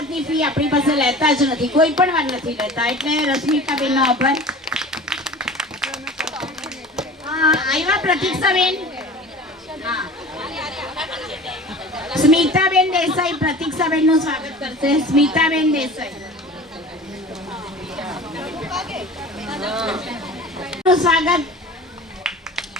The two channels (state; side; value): normal; both; correlation 0.39